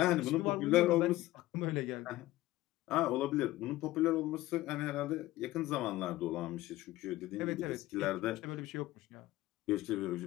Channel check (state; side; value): quieter; right; 16.9 dB